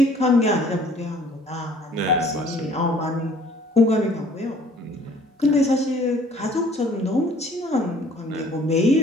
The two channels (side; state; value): both; normal; correlation 0.56